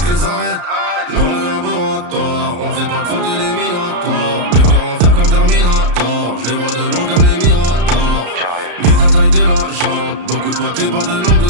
les arêtes. Dans le laboratoire, on fait pas de faute éliminatoire. Le cœur en fer comme Terminator, je les vois de loin comme les Miradors. Vite la taille de la jambe, beaucoup de papier, pas de langue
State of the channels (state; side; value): late; left; 34 ms